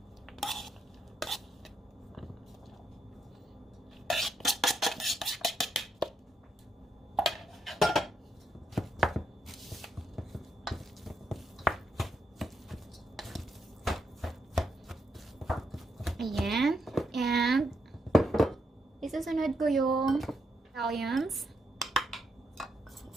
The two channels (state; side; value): normal; both; correlation 0.79